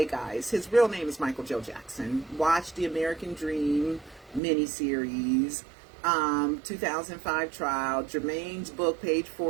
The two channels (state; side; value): drops out; left; at 4.4 s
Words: guys, his real name is Michael Joe Jackson. Watch the American Dream miniseries, 2005 trial, Jermaine's book, page